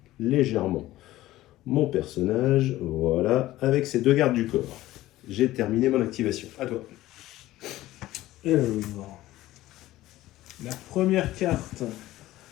légèrement mon personnage, voilà, avec ces 2 gardes du corps. J'ai terminé mon activation. À toi. Et la première carte,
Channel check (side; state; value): right; quieter; 16.0 dB